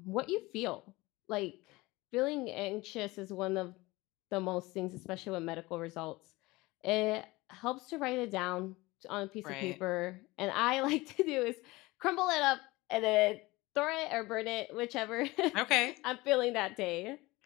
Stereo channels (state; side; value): quieter; right; 21.2 dB